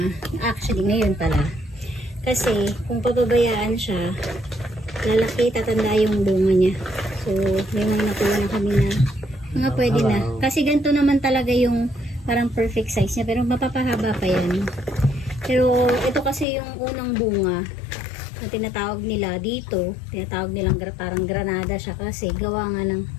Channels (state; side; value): drops out; right; at 16.4 s